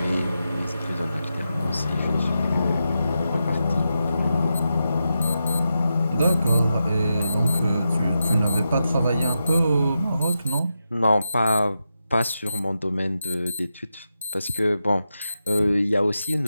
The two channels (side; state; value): both; inverted; correlation -0.89